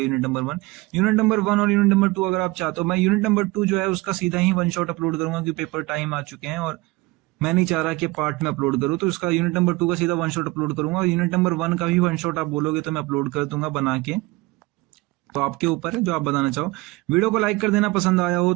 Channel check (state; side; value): quieter; left; 21.8 dB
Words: यूनिट नंबर 1 और यूनिट नंबर 2 अगर आप चाहते हो, मैं यूनिट नंबर 2 जो है उसका सीधा ही वन शॉट अपलोड करूंगा, क्योंकि पेपर टाइम आ चुके हैं और मैं नहीं चाह रहा कि पार्ट में अपलोड करूं। तो इसका यूनिट नंबर 2 का सीधा वन शॉट अपलोड करूंगा, और यूनिट नंबर 1 का भी वन शॉट आप बोलोगे तो मैं अपलोड कर दूंगा बना के। तो आपके ऊपर है जो आप बताना चाहो। वीडियो को लाइक कर देना पसंद आया हो